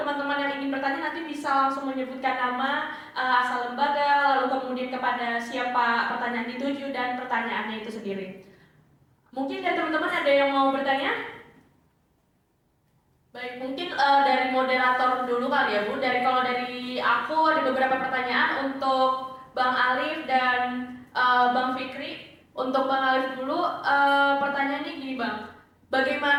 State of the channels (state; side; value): identical; both; correlation 1.00